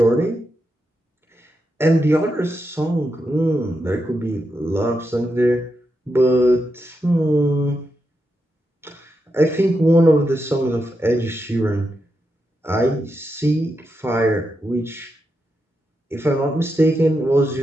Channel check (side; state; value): both; normal; correlation 0.85